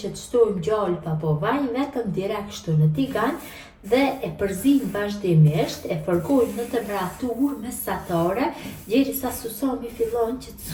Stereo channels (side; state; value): both; identical; correlation 1.00